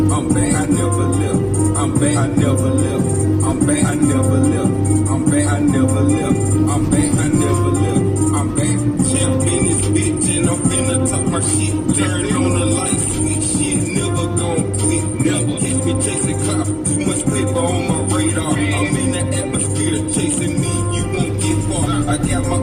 I'm back, I never left. I'm back, I never left. I'm back, I never left. I'm back, I never left. I'm back, I never left. I'm back, champ in this bitch, and I'm finna talk my shit. Turn on the light switch, shit never gon' quit. Never catch me chasing cops. Too much paper on my radar. I'm in the atmosphere, chasing me, you won't get far. I got my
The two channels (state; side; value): identical; both; correlation 1.00